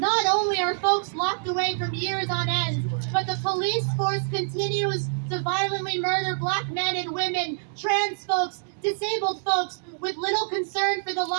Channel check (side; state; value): left; silent; digital silence